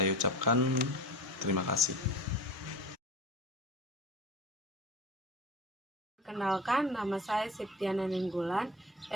ucapkan terima kasih. Perkenalkan, nama saya Septiana Nenggolan,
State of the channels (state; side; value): normal; both; correlation 0.34